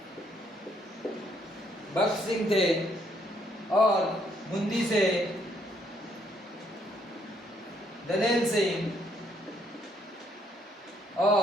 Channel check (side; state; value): both; normal; correlation 0.69